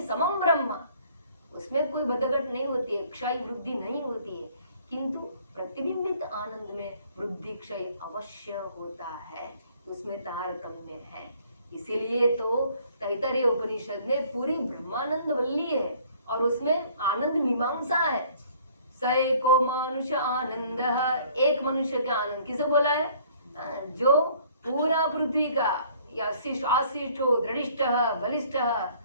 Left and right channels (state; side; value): inverted; both; correlation -0.58